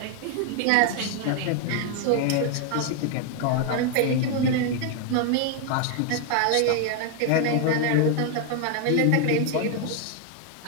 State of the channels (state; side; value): different; both; correlation 0.01